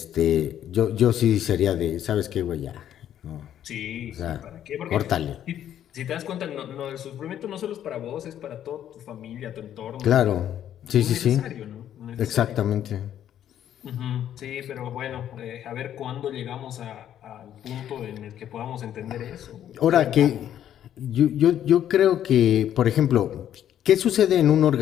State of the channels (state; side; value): quieter; right; 10.7 dB